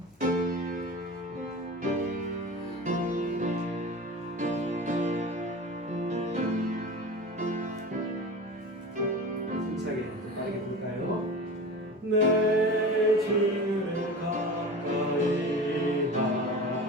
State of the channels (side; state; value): both; normal; correlation 0.33